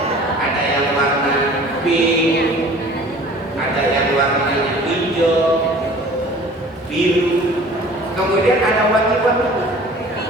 Ada yang warna pink, ada yang warnanya hijau, biru, kemudian ada wangi-wangi.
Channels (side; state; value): both; normal; correlation 0.46